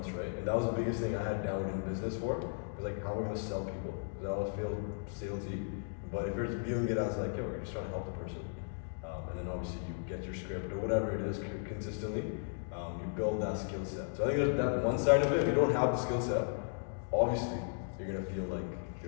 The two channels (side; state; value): right; silent; digital silence